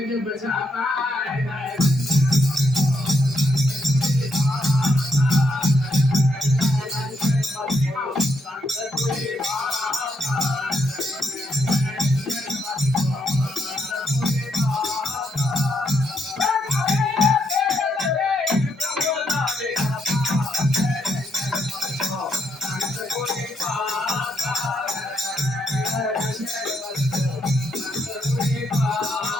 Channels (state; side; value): normal; both; correlation 0.77